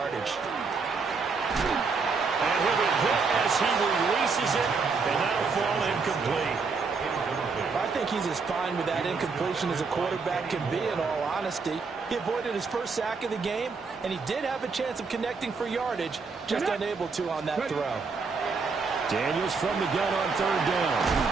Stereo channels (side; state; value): left; quieter; 4.7 dB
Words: And he'll be hit as he releases it, and that'll fall incomplete. I think he's as fine with that incompletion as a quarterback can be, in all honesty. He avoided his 1st sack of the game, and he did have a chance of connecting for yardage, just unable to on that throw. Daniels from the gun on 3rd down.